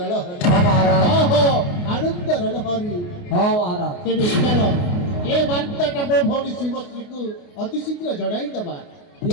ଲହରୀ। ହଁ ମହାରାଜ। ଓହୋ ଆନନ୍ଦର ଲହରୀ। ହଁ ମହାରାଜ। ତେବେ ଚାଲ ଏ ବାର୍ତ୍ତାଟା ମୋ ଭଉଣୀ ଶିବଶ୍ରୀକୁ ଅତି ଶୀଘ୍ର ଜଣାଇ ଦେବା।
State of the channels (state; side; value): late; right; 29 ms